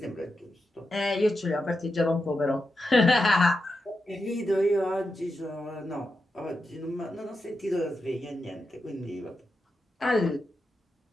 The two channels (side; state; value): both; normal; correlation 0.88